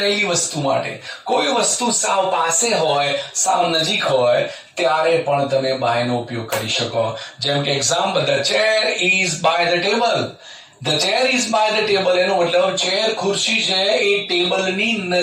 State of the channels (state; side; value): identical; both; correlation 1.00